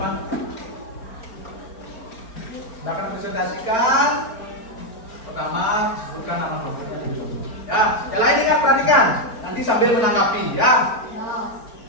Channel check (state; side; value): late; right; 4.4 ms